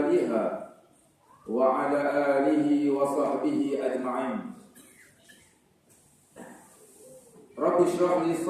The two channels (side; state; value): both; identical; correlation 1.00